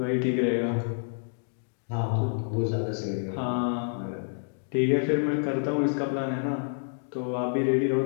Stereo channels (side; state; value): right; silent; digital silence